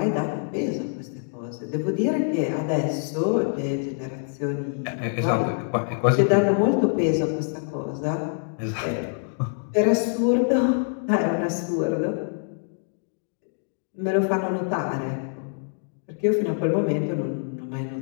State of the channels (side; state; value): right; silent; digital silence